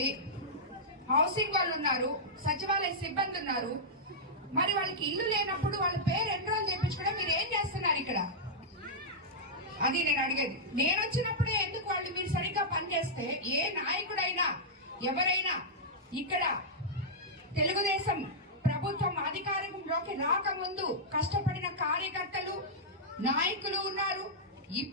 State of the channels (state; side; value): normal; both; correlation -0.09